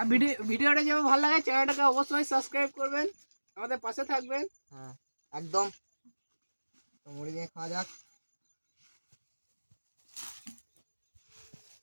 ভিডিওটা যেমন ভালো লাগে চ্যানেলটাকে অবশ্যই সাবস্ক্রাইব করবেন, আমাদের পাশে থাকবেন। হ্যাঁ একদম। তো মুড়ি দিয়ে খাওয়া যাক।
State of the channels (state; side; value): inverted; both; correlation -1.00